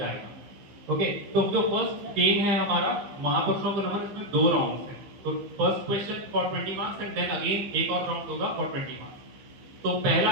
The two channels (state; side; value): late; left; 15 ms